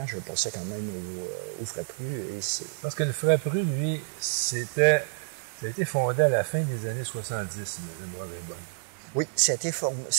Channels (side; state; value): left; silent; digital silence